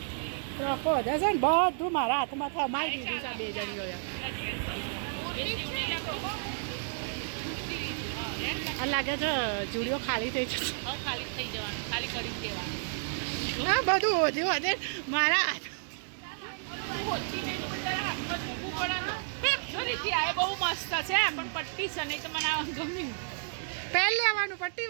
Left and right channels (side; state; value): left; silent; digital silence